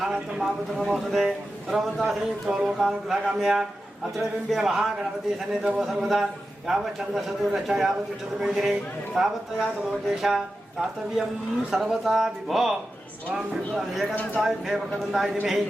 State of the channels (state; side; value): normal; both; correlation 0.92